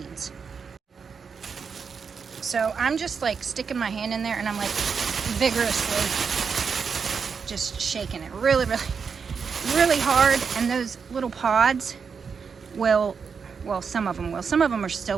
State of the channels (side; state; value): left; quieter; 5.9 dB